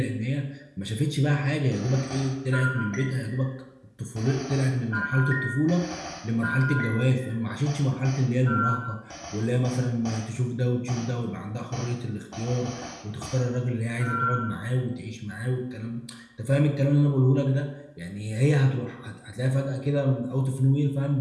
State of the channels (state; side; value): identical; both; correlation 1.00